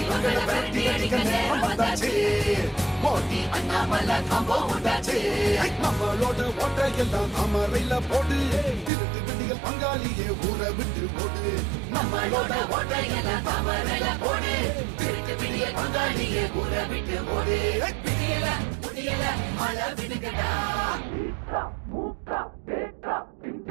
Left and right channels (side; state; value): left; drops out; at 8.9 s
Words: இவங்கள விரட்டி அடிக்க நேரம் வந்தாச்சு மோடி அண்ணாமலை காம்போ உண்டாச்சு நம்மளோட ஓட்ட எல்லாம் அமரையில போடு திருட்டு விடிகள் பங்காளியே ஊரை விட்டு போடு நம்மளோட ஓட்டையெல்லாம் தாமரையில போடு திருட்டு பிடிய பங்காளியே ஊற விட்டு போடு விடியல முடியல மழை விடுகடா மூக்கா தேட்டா